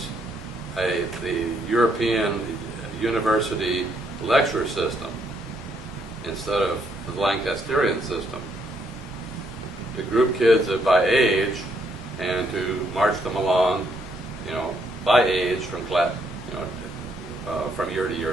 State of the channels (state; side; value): normal; both; correlation 0.72